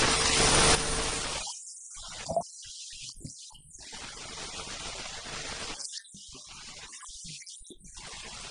We quarrel among ourselves. And then when our brothers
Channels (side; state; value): both; identical; correlation 1.00